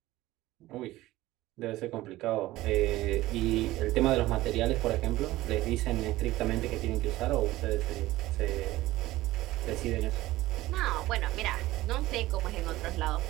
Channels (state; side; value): quieter; left; 17.2 dB